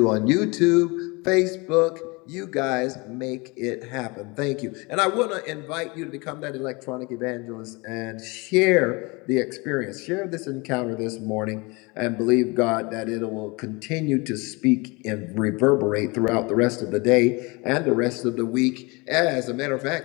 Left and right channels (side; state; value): right; quieter; 26.7 dB